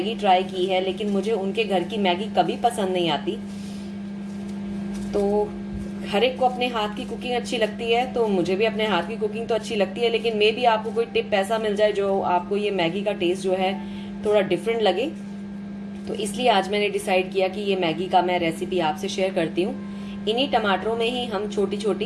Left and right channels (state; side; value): identical; both; correlation 1.00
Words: ट्राई की है, लेकिन मुझे उनके घर की मैगी कभी पसंद नहीं आती। तो हर एक को अपने हाथ की कुकिंग अच्छी लगती है, तो मुझे भी अपने हाथ की कुकिंग तो अच्छी लगती है, लेकिन मे भी आपको कोई टिप ऐसा मिल जाए जो आपको ये मैगी का टेस्ट जो है थोड़ा डिफरेंट लगे। तो इसलिए आज मैंने डिसाइड किया कि ये मैगी का मैं रेसिपी आपसे शेयर करती हूँ। इन्हीं टमाटरों में ही हम छोटी